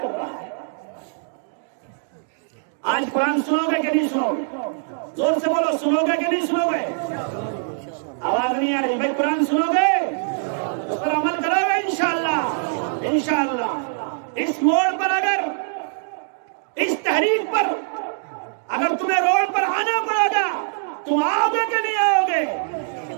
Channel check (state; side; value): silent; left; digital silence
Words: کر رہا ہے. آج قرآن سنو گے کہ نہیں سنو گے؟ زور سے بولو سنو گے کہ نہیں سنو گے؟ آواز نہیں آ رہی بھائی. قرآن سنو گے اس پر عمل کرو گے انشاءاللہ. انشاءاللہ اس موڑ پر اگر اس تحریک پر اگر تمہیں روڈ پر آنا پڑے گا تم آؤ گے کہ نہیں آؤ گے؟